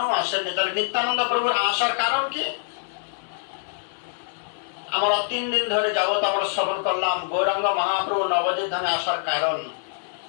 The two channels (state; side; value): silent; right; digital silence